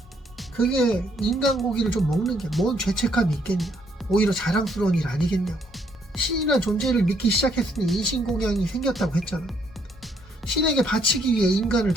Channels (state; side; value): normal; both; correlation 0.70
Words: 그게 인간 고기를 좀 먹는 게 뭔 죄책감이 있겠냐. 오히려 자랑스러운 일 아니겠냐고. 신이란 존재를 믿기 시작했으니 인신공양이 생겼다고 했잖아. 신에게 바치기 위해 인간을